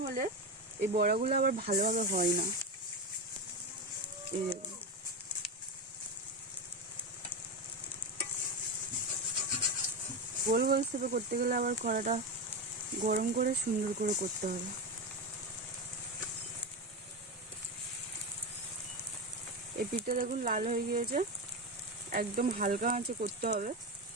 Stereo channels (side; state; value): both; normal; correlation 0.16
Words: হলে এই বড়াগুলো আবার ভালোভাবে হয় না। এই দেখুন, গোল গোল শেপে করতে গেলে আবার কড়াটা গরম করে সুন্দর করে করতে হবে। এই পিঠটা দেখুন লাল হয়ে গিয়েছে, একদম হালকা আঁচে করতে হবে।